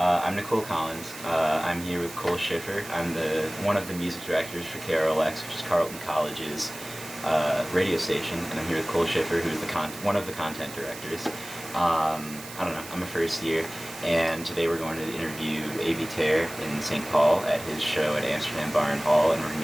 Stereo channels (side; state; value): right; noise; hiss, 13 dB below the sound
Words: Nicole Collins. I'm here with Cole Schiffer. I'm one of the music directors for KRLX, which is Carleton College's radio station, and I'm here with Cole Schiffer, who's one of the content directors. I don't know. I'm a first year, and today we're going to interview Avey Tare in St. Paul at his show at Amsterdam Bar Hall, and we're going